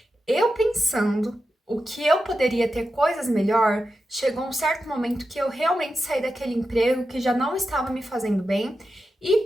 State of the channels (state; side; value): normal; both; correlation 0.90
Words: Eu pensando o que eu poderia ter coisas melhor, chegou um certo momento que eu realmente saí daquele emprego que já não estava me fazendo bem